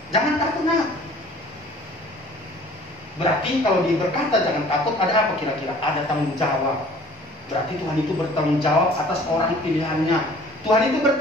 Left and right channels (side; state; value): both; normal; correlation 0.51